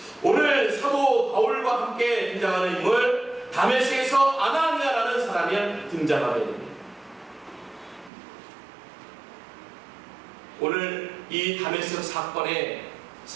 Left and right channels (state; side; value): drops out; left; at 8.1 s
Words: 오늘 사도 바울과 함께 등장하는 인물 다메섹에서 아나니아라는 사람이 등장하게 됩니다. 오늘 이 다메섹 사건의